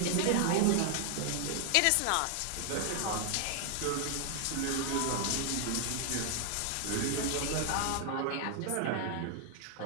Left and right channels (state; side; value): different; both; correlation 0.00